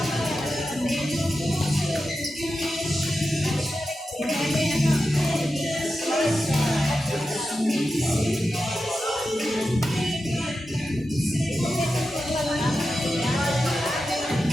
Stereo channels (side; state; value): both; normal; correlation 0.91